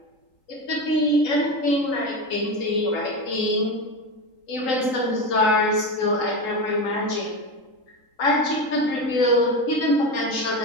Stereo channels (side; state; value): right; late; 3.8 ms